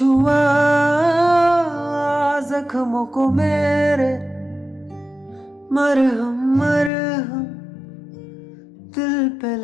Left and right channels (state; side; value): drops out; right; at 6.9 s